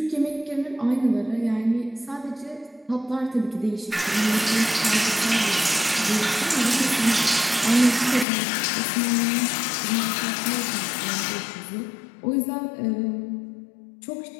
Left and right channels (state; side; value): drops out; right; at 8.2 s